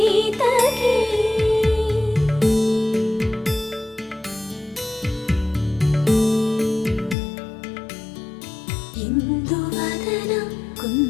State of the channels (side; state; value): right; drops out; at 7.2 s